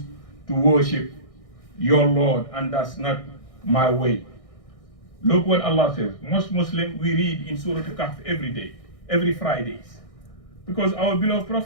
to worship your Lord, and that's not my way. Look what Allah says. Most Muslims, we read in Surah Al-Kahf every day, every Fridays. Because our beloved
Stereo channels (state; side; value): late; right; 1.6 ms